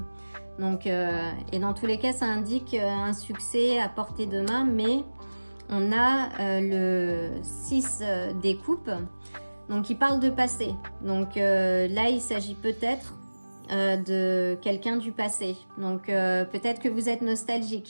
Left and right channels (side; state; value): both; inverted; correlation -1.00